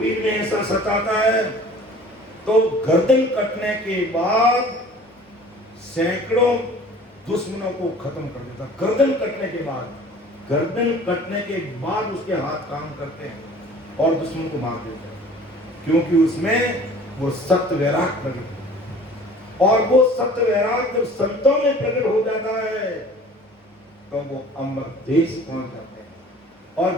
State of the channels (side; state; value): both; normal; correlation 0.47